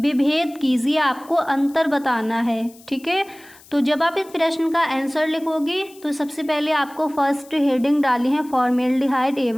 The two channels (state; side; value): noise; left; hiss, 24 dB below the sound